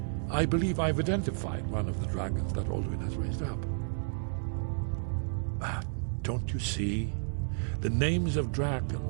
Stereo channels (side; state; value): left; silent; 57 dB below the other